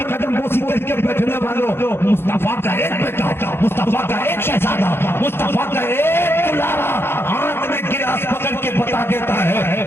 قدم بوسی کر کے بیٹھنے مصطفیٰ کا ایک بیٹا، مصطفیٰ کا ایک شہزادہ، مصطفیٰ کا ایک دلارا ہاتھ میں گلاس پکڑ کے بتا دیتا ہے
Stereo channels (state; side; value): late; right; 0.11 ms